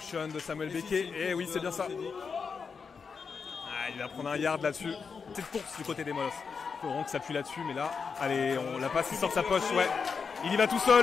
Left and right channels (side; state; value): right; quieter; 5.6 dB